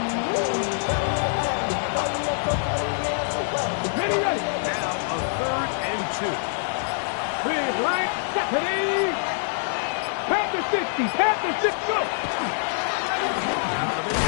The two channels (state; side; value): silent; right; 62 dB below the other